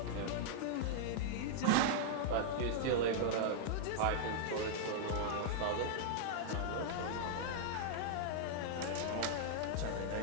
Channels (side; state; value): both; different; correlation -0.01